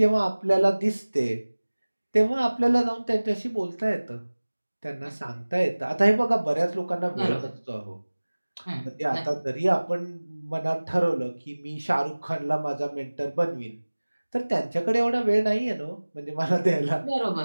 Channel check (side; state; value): both; inverted; correlation -1.00